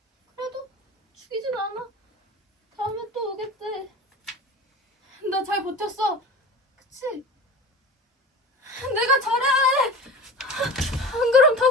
그래도 죽이진 않아. 다음에 또 오겠대. 나 잘 버텼어. 그치? 내가 잘해. 안 그럼 다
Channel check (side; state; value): both; normal; correlation 0.34